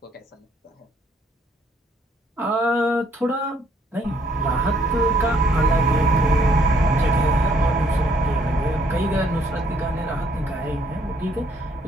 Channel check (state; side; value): normal; both; correlation 0.66